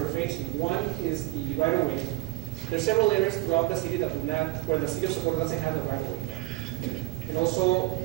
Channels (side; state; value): left; quieter; 17.7 dB